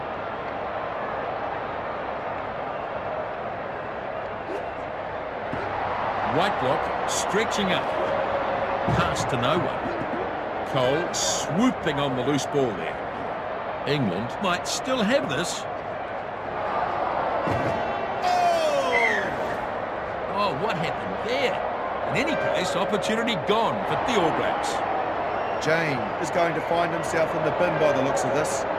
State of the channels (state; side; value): identical; both; correlation 1.00